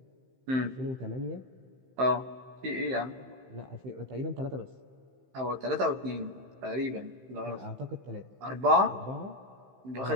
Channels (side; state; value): left; late; 15 ms